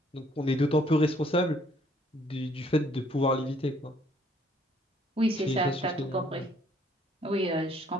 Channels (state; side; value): normal; both; correlation 0.63